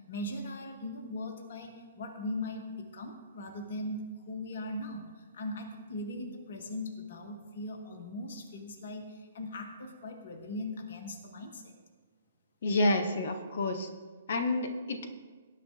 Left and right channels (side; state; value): both; inverted; correlation -0.62